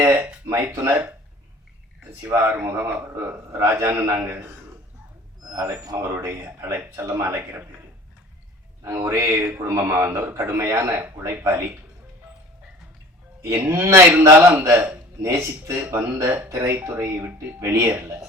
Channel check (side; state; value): both; normal; correlation 0.45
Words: மைத்துனர் சிவா ஆறுமுகம், ராஜான்னு நாங்கள் அழைப்போம். அவருடைய செல்லமாக அழைக்கிற பேர். நாங்கள் ஒரே குடும்பமாக வந்தவர். கடுமையான உழைப்பாளி. என்ன இருந்தாலும் அந்த நேசித்து வந்த திரைத்துறையை விட்டு வெளியேறல.